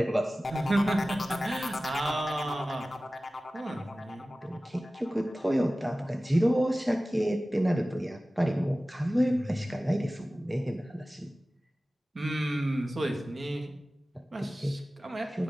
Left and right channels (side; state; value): both; normal; correlation 0.97